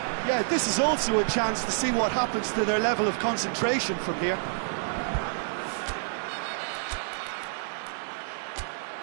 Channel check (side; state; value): left; silent; digital silence